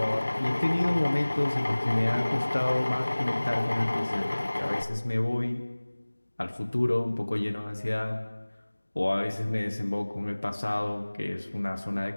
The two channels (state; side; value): inverted; both; correlation -1.00